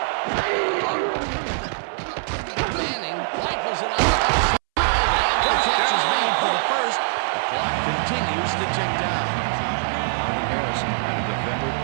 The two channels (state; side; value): silent; left; 63 dB below the other